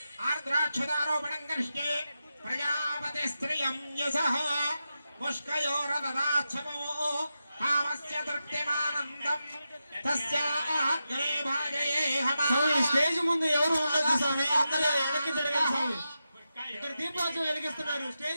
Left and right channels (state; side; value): inverted; both; correlation -0.89